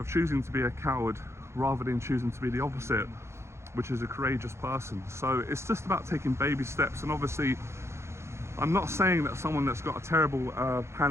choosing to be a coward rather than choosing to be the opposite, which is a courageous person. So it's just about taking baby steps. And obviously, I'm not saying that someone that's got a terrible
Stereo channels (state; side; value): late; left; 0.13 ms